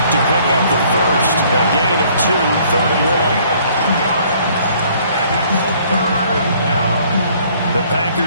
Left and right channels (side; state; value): both; inverted; correlation -0.60